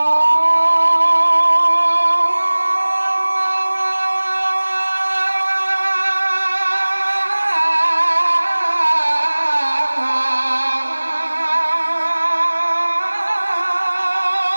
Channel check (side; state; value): both; inverted; correlation -1.00